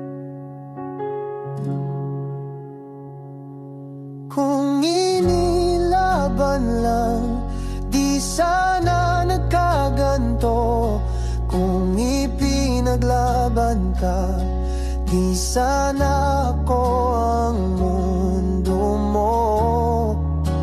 kung inilaban lang, di sana nagkaganto. Kung ipinaglaban ka, di sana ako ang mundo mo.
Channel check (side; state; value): both; identical; correlation 1.00